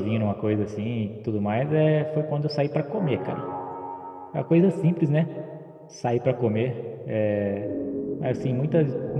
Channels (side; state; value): both; identical; correlation 1.00